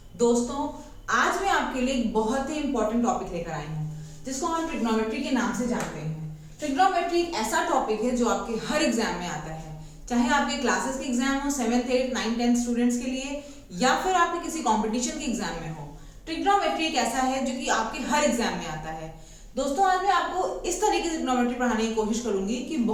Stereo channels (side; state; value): both; identical; correlation 1.00